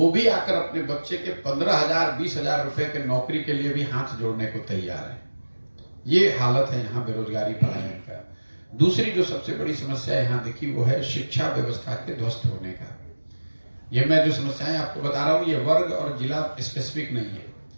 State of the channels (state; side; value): inverted; both; correlation -1.00